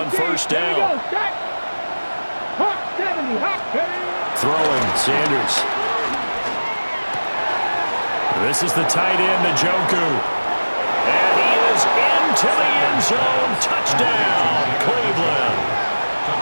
first down. Throwing, Sanders. This is the tight end, Njoku. And he is into the end zone. Touchdown, Cleveland.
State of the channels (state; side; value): inverted; both; correlation -1.00